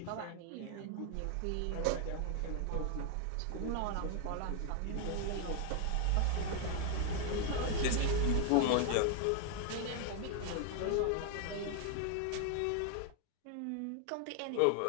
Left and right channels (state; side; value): different; both; correlation 0.00